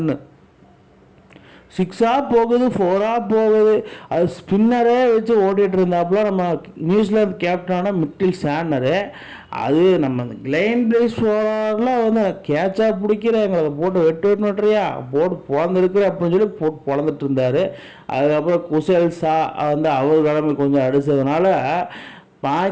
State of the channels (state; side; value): identical; both; correlation 1.00